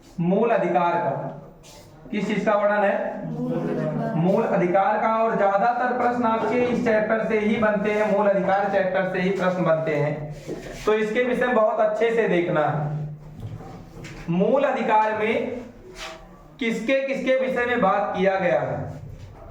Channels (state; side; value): identical; both; correlation 1.00